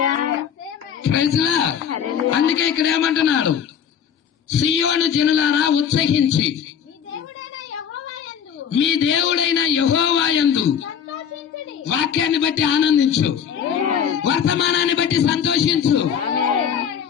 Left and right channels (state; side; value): quieter; right; 8.1 dB